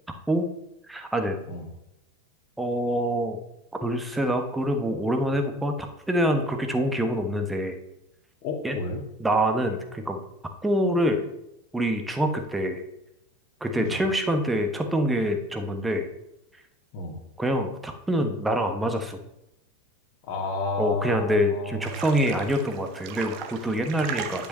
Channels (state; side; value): normal; both; correlation 0.55